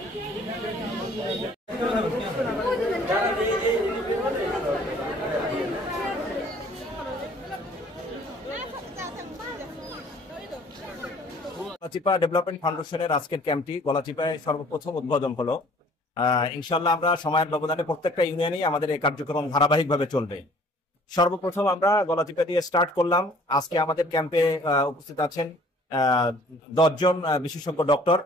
গলাচিপা ডেভেলপমেন্ট ফাউন্ডেশনের আজকের ক্যাম্পটি গলাচিপায় সর্বপ্রথম উদ্বোধন হলো। ইনশাল্লাহ আমরা সময়ের ব্যবধানে প্রত্যেকটা ইউনিয়নেই আমাদের এই কার্যক্রম ধারাবাহিকভাবে চলবে। সর্বপ্রথম আমরা গলাচিপা দিয়ে স্টার্ট করলাম। আজকে আমাদের ক্যাম্পে উপস্থিত আছেন 10 জন বিশেষজ্ঞ ডক্টর।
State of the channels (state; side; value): normal; both; correlation 0.54